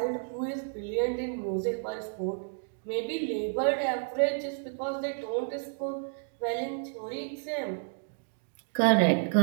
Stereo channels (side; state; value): left; silent; digital silence